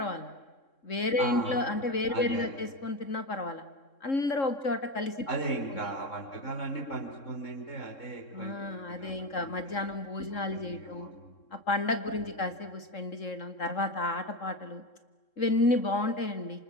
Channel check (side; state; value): right; late; 3.7 ms